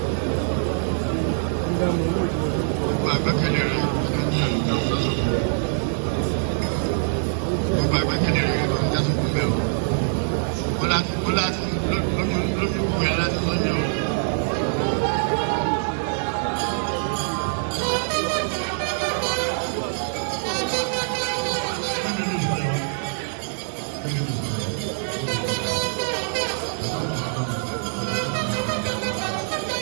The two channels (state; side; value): silent; left; digital silence